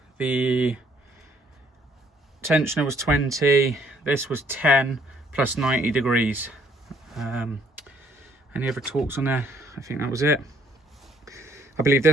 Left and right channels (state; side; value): normal; both; correlation 0.65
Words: The tensioner was 20, this was 10 plus 90 degrees. Any other talks on there? I think that was it. I believe